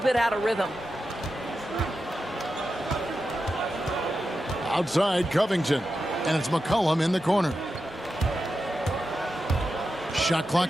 out of rhythm. Outside Covington. And it's McCollum in the corner. Shot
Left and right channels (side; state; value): both; normal; correlation 0.90